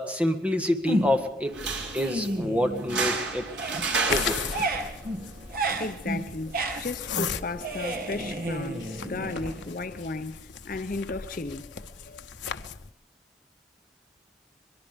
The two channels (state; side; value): normal; both; correlation 0.58